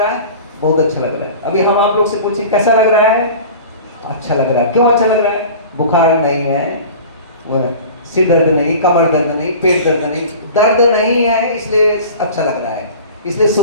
है, बहुत अच्छा लग रहा है। अभी हम आप लोग से पूछिए कैसा लग रहा है, अच्छा लग रहा है। क्यों अच्छा लग रहा है? बुखार नहीं है, सिर दर्द नहीं, कमर दर्द नहीं, पेट दर्द नहीं, दर्द नहीं है, इसलिए अच्छा लग रहा है, इसलिए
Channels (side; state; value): both; inverted; correlation -0.39